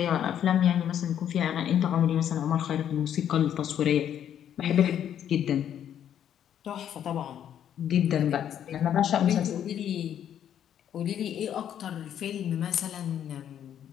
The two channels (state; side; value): quieter; right; 9.8 dB